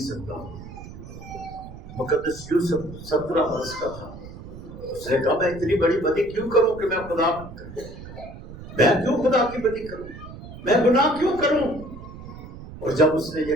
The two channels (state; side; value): noise; right; rumble, 14 dB below the sound